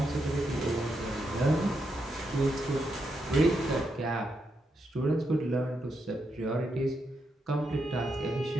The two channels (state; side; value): normal; both; correlation 0.83